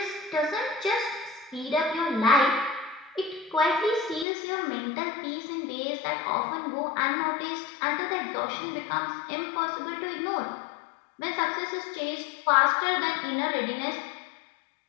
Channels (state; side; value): drops out; right; at 4.2 s